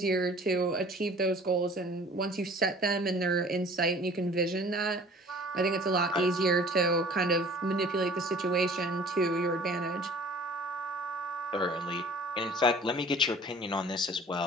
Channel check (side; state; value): both; normal; correlation 0.49